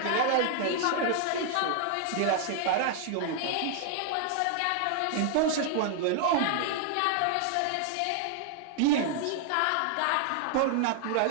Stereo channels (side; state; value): both; different; correlation 0.00